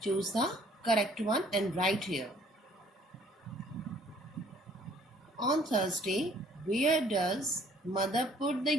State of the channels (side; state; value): both; normal; correlation 0.59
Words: Choose the correct one and write here. On Thursday, where does mother put the